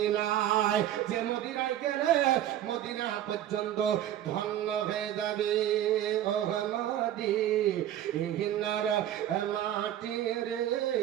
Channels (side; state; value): left; quieter; 11.7 dB